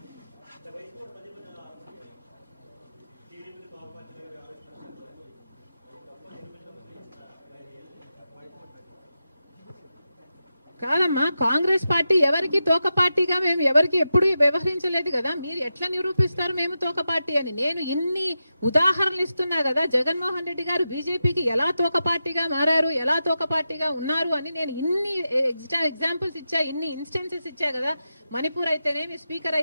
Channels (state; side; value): inverted; both; correlation -0.89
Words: కాదమ్మా, కాంగ్రెస్ పార్టీ ఎవరికి తోక పార్టీగా మేము ఎవరికి ఎప్పుడు వ్యవహరించలేదు కదా. మీరు ఎట్లా నిరూపిస్తారు మేము తోక పార్టీ అని? నేను ఇన్ని ఉదాహరణలు ఇస్తున్నా కదా, జగన్మోహన్ రెడ్డి గారు బీజేపీకి ఎలా తోక పార్టీగా మారారు, ఎలా తోక పార్టీగా ఉన్నారు అని నేను ఇన్ని ఎగ్జాంపుల్స్ ఇచ్చా, ఇన్ని ఇన్స్టెన్సెస్ ఇచ్చా కదా. మణిపూర్ అయితేనేమి, స్పీకర్